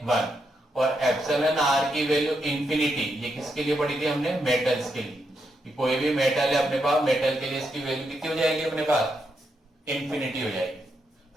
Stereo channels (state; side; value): normal; both; correlation 0.81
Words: 1। और एप्सिलॉन आर की वैल्यू इंफिनिटी, ये किसके लिए पढ़ी थी हमने, मेटल्स के लिए। कि कोई भी मेटल है अपने पास, मेटल के लिए इसकी वैल्यू कितनी हो जाएगी अपने पास, इंफिनिटी हो जाएगी।